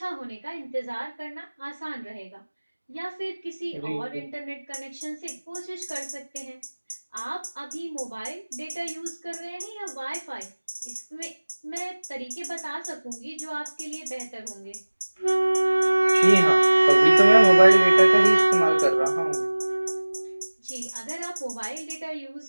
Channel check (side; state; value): both; inverted; correlation -1.00